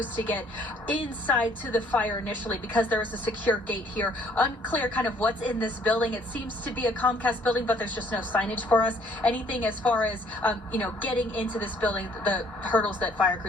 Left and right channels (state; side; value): normal; both; correlation 0.61